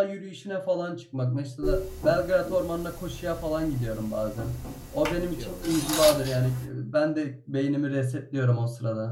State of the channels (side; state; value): both; identical; correlation 1.00